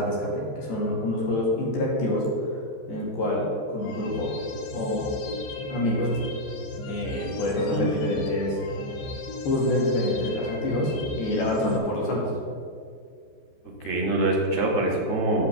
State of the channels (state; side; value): late; right; 14 ms